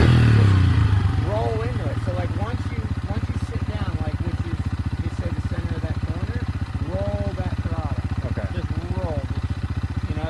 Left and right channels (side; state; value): both; identical; correlation 1.00